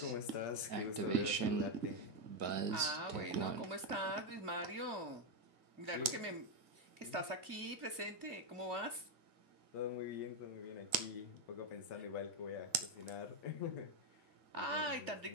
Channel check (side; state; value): left; late; 1.7 ms